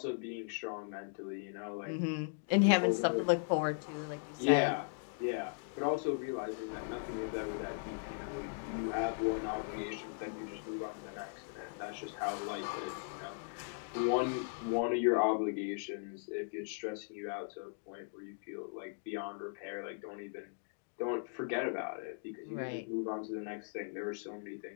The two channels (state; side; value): silent; right; digital silence